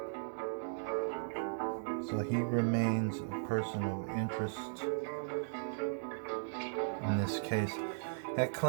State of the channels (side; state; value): left; silent; digital silence